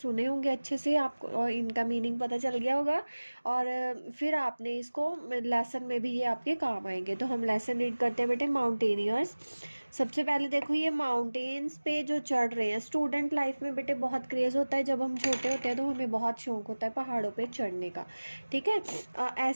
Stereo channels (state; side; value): inverted; both; correlation -1.00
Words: होंगे अच्छे से, आपको और इनका मीनिंग पता चल गया होगा और फिर आपने इसको लेसन में भी ये आपके काम आएंगे। तो हम लेसन रीड करते हैं बेटे। माउंटेनियर्स। सबसे पहले देखो ये माउंटेन्स पे जो चढ़ रहे हैं, स्टूडेंट लाइफ में बेटे बहुत क्रेज़ होता है। जब हम छोटे होते हैं तो हमें बहुत शौक होता है पहाड़ों पे चढ़ने का, ठीक है।